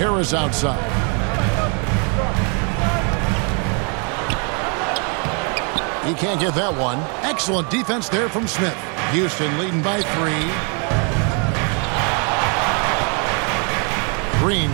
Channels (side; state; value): left; quieter; 37.0 dB